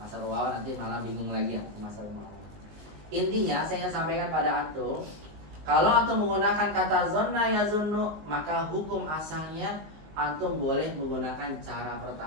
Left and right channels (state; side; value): late; left; 19 ms